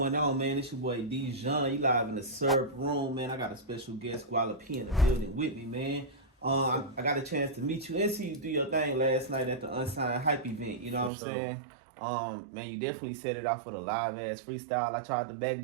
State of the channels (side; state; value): left; drops out; at 11.1 s